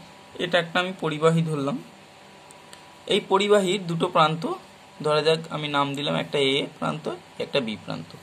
এটা একটা আমি পরিবাহী ধরলাম। এই পরিবাহীর দুটো প্রান্ত, ধরা যাক আমি নাম দিলাম একটা এ প্রান্ত, একটা বি প্রান্ত।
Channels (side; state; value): both; identical; correlation 1.00